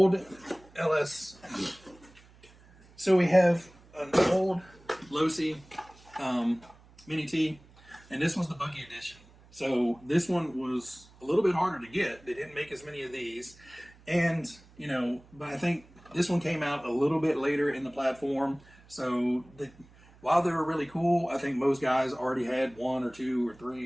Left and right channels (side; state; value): right; noise; hum, 26 dB below the sound